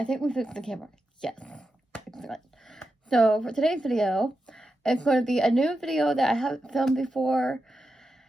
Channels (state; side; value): normal; both; correlation 0.89